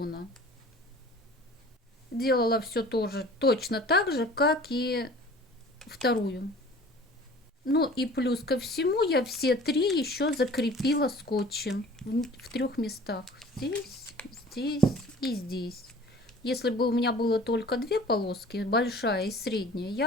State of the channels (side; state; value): both; normal; correlation 0.46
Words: Делала все тоже точно так же, как и вторую. Ну и плюс ко всему я все три еще закрепила скотчем в трех местах. Здесь, здесь и здесь. Если бы у меня было только две полоски, большая и средняя,